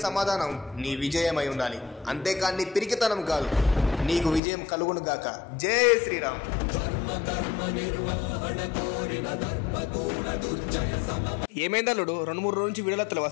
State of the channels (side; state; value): right; drops out; at 4.4 s